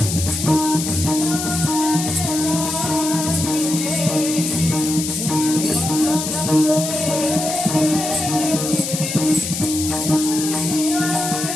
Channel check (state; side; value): noise; left; hiss, 4 dB below the sound